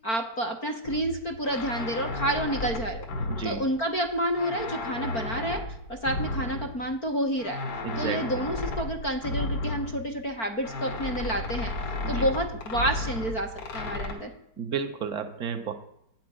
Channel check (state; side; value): late; right; 4.4 ms